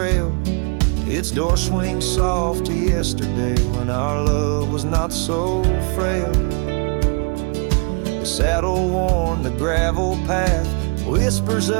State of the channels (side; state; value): left; quieter; 34.8 dB